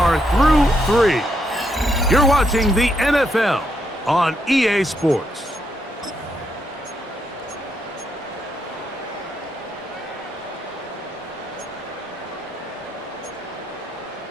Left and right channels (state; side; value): normal; both; correlation 0.78